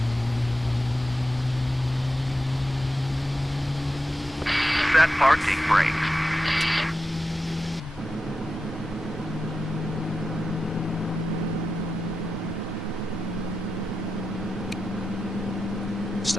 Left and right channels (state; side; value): normal; both; correlation 0.89